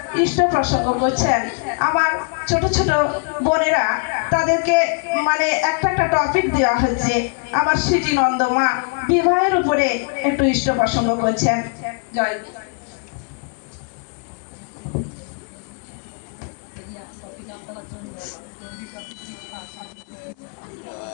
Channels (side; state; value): right; quieter; 39.2 dB